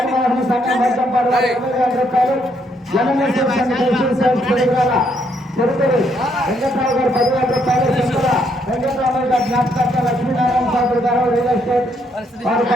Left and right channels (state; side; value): normal; both; correlation 0.72